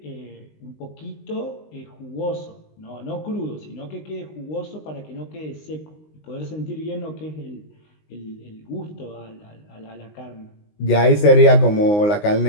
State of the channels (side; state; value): right; late; 19 ms